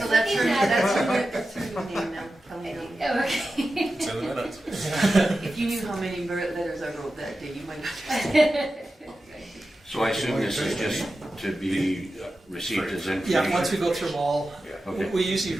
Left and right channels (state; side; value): normal; both; correlation 0.93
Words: that's her, looking at that's her new name now, Kelly Nelly. Okay. It's in the minutes. If you knew how many letters I wrote that day, you might have. So I assume this is just to be received as information? Yeah, once we go through them all, Okay. we usually